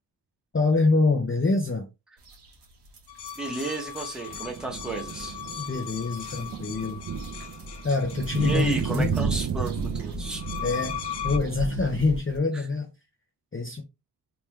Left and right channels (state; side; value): normal; both; correlation 0.59